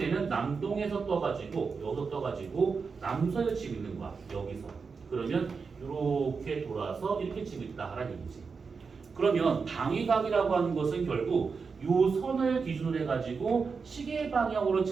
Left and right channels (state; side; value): quieter; left; 5.1 dB